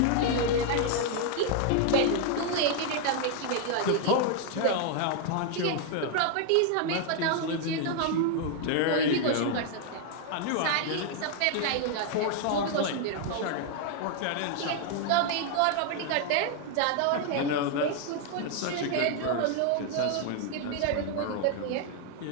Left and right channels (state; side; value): different; both; correlation 0.00